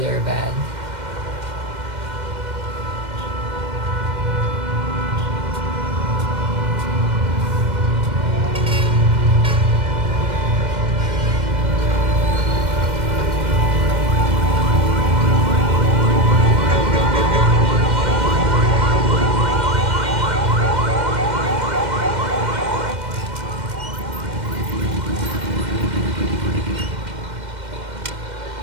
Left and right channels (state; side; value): late; left; 2.1 ms